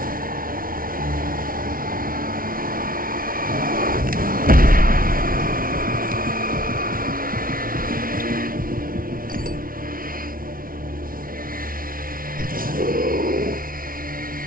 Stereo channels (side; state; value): left; late; 0.42 ms